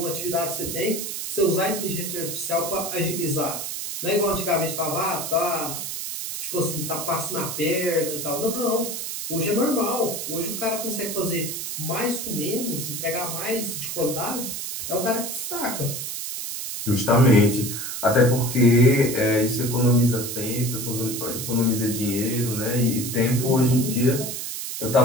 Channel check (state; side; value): noise; right; hiss, 5 dB below the sound